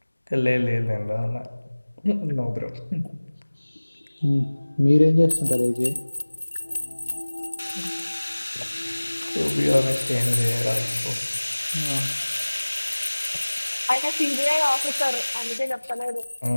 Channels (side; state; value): both; inverted; correlation -1.00